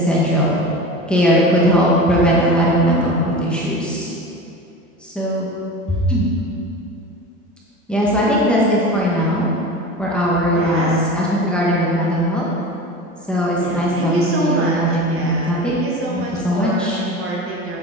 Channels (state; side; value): normal; both; correlation 0.32